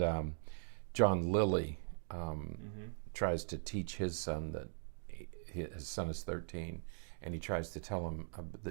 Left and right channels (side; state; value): left; silent; digital silence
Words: John Lilly tries to teach his son that his son is 13, and he tries to tell him